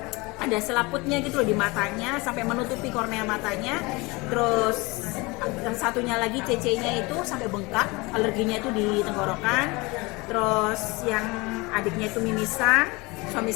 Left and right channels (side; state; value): right; quieter; 24.8 dB